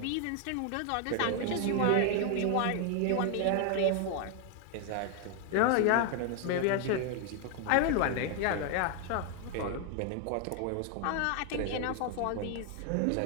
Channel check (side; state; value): both; different; correlation 0.00